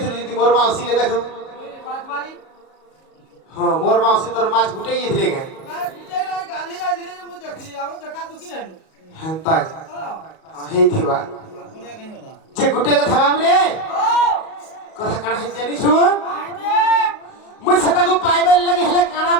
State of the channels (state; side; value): late; right; 38 ms